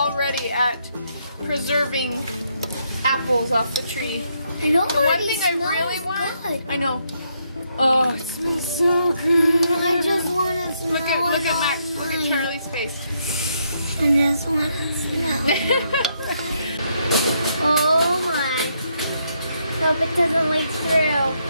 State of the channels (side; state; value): both; inverted; correlation -0.76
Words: at preserving apples off the tree. I know. The one thing I really want. Good. I know. Oh, It smells so good. I just want to smell it. look at Max. Look at Charlie's face. I just want to smell it. Oh my. Hope it doesn't leak through